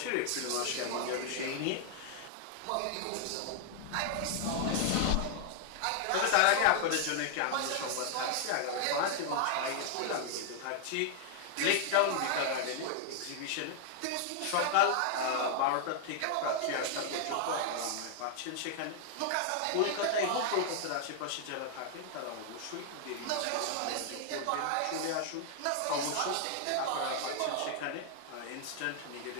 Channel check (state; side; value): different; both; correlation 0.00